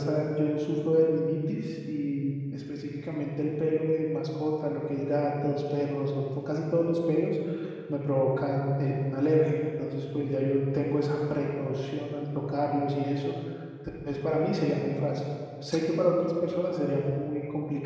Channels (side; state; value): both; identical; correlation 1.00